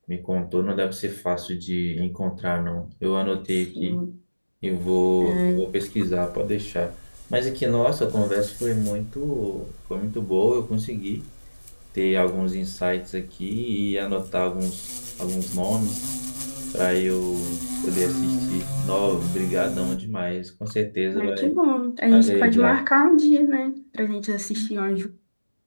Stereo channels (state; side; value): inverted; both; correlation -1.00